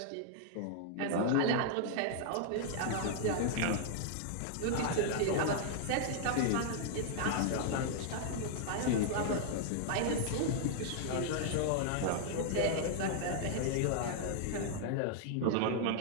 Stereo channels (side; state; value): both; different; correlation -0.01